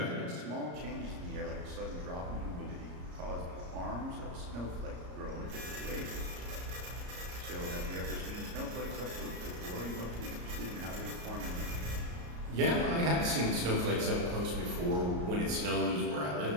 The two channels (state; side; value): late; left; 34 ms